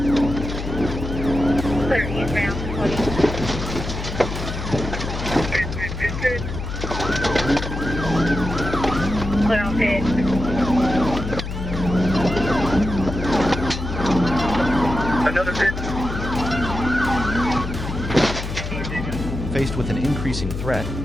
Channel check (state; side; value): noise; left; hum, 6 dB below the sound